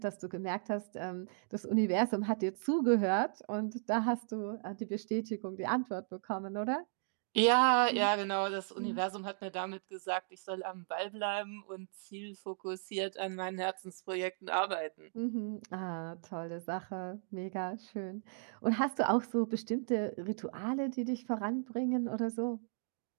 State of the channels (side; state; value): left; silent; digital silence